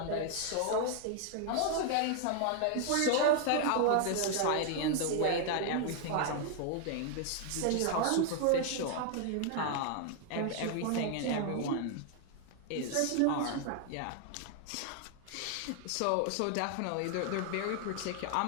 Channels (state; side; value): different; both; correlation 0.00